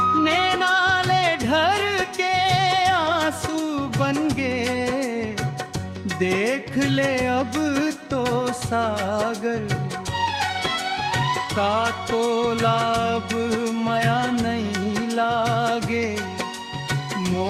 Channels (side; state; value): both; identical; correlation 1.00